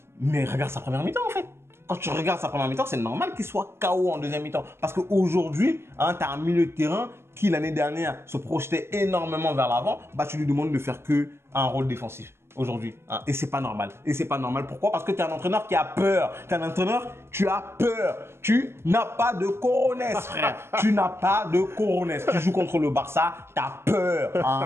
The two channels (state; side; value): late; left; 0.12 ms